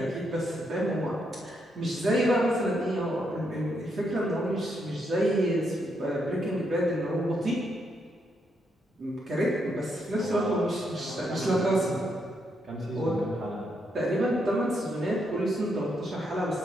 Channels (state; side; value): normal; both; correlation 0.78